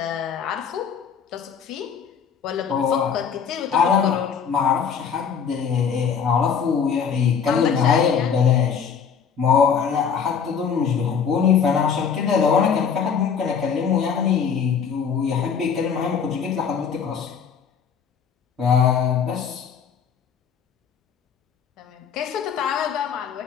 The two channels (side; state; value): right; quieter; 6.9 dB